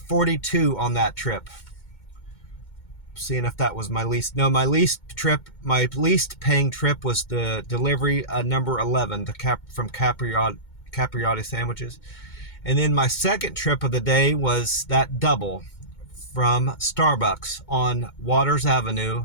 on that trip. Seeing if that was my least. No, my least paying trip was the delivery number 11, from capriotti sandwiches. And then my second trip of the day was that double from Starbucks on Waters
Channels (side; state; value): right; late; 2.2 ms